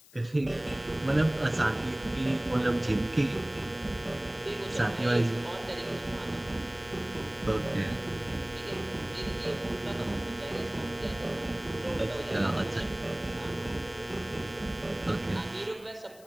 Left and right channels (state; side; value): noise; left; hiss, 23 dB below the sound